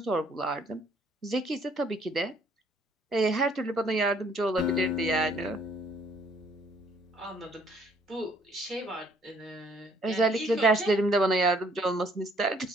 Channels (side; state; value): both; normal; correlation 0.63